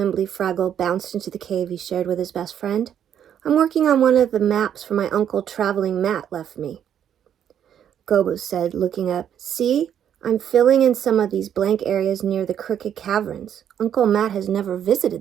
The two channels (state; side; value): quieter; left; 9.4 dB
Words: Fraggle bounced into the cave he shared with his best friend. I'm working on one of the maps for my uncle Traveling Matt left me. Gobo said, looking up. See? I'm filling in some of these blank areas near the Crooked Caverns. Uncle Matt has never